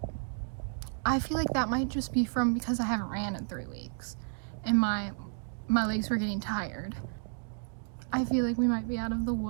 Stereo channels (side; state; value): left; silent; digital silence